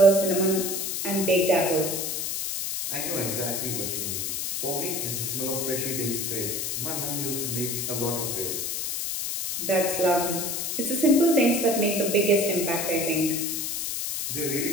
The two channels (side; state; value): left; noise; hiss, 2 dB below the sound